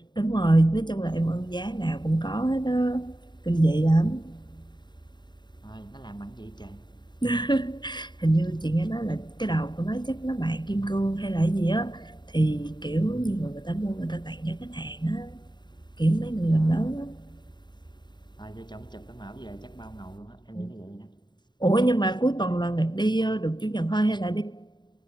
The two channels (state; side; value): late; right; 0.21 ms